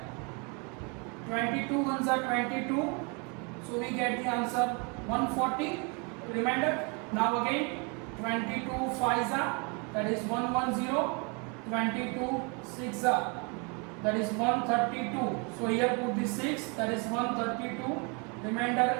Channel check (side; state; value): left; quieter; 33.1 dB